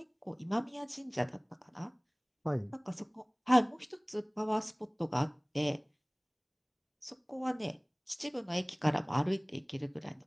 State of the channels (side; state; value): both; identical; correlation 1.00